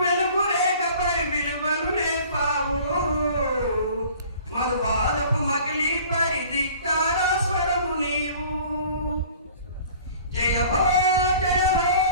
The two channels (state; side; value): inverted; both; correlation -0.48